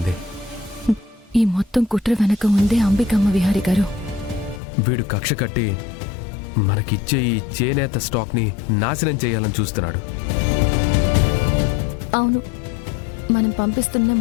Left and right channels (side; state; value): right; drops out; at 4.6 s